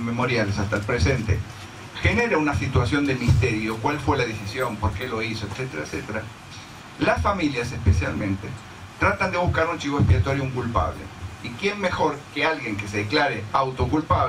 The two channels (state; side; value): identical; both; correlation 1.00